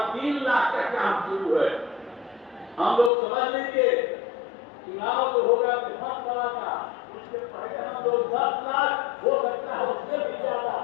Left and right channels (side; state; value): right; drops out; at 3.1 s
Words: 3 लाख का काम शुरू है। हम लोग समझ लीजिए चुनाव जो होगा विधानसभा का, उससे पहले हम लोग 10 लाख हो सकता है उससे भी ज्यादा